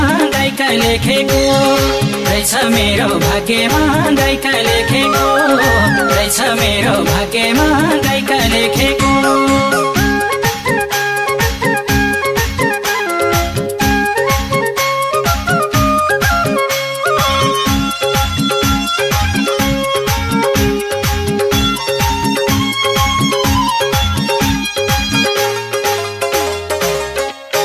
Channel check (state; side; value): identical; both; correlation 1.00